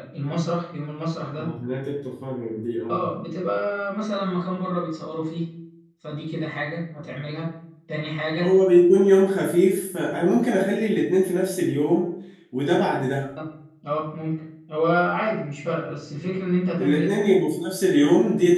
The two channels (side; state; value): both; identical; correlation 1.00